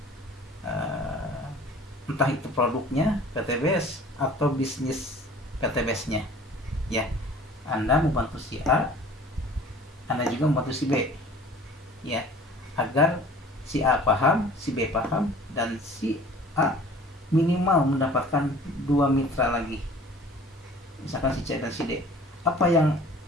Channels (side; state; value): both; normal; correlation 0.48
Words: entah itu produknya PTBS atau bisnis PTBS-nya ya. Anda membantu si A, Anda juga membantu si B ya, agar si A paham, si B paham, dan si A minimal mendapatkan 2 mitra lagi, misalkan si C dan si D. Apa yang